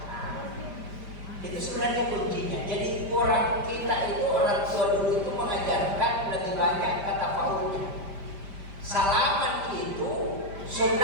kita itu orang tua dulu itu mengajarkan lebih banyak kata paulnya. Salaman itu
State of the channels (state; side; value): late; left; 5.0 ms